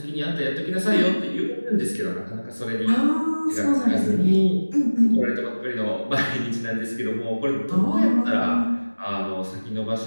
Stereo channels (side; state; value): both; inverted; correlation -1.00